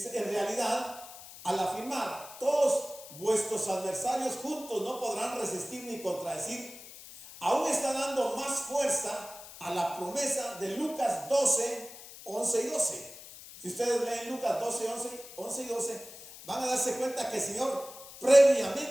en realidad, al afirmar, todos vuestros adversarios juntos no podrán resistir ni contradecir, aún está dando más fuerza a la promesa de Lucas 12, 11 y 12. Si ustedes leen Lucas 12, 11 y 12, van a darse cuenta que el Señor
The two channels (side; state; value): left; noise; hiss, 16 dB below the sound